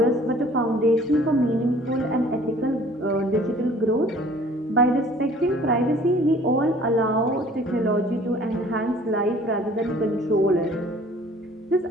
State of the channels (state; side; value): normal; both; correlation 0.52